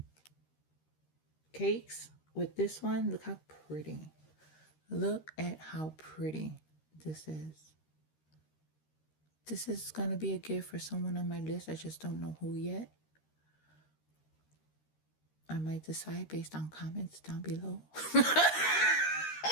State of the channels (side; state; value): right; late; 13 ms